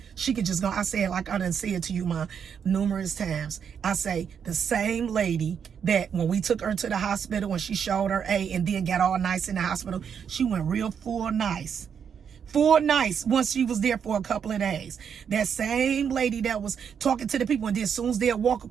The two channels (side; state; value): left; quieter; 7.4 dB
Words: She could just go, I said, like I done said to you, Ma, numerous times, I say, the same lady that when we took her to the hospital, when she showed her A and then got all nice in the hospital, she went real full nice once she was there for a couple of days. That same lady that was talking to the people, and then as soon as they'll walk